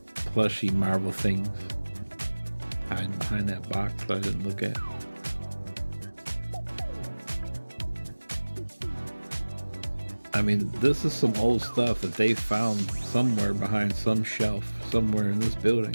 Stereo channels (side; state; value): both; inverted; correlation -1.00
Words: plushy Marvel things hiding behind that box that I didn't look at. I mean, this is some old stuff that they found somewhere behind some shelf somewhere in this building.